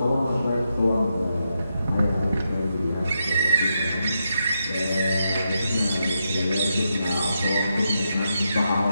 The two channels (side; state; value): both; inverted; correlation -0.84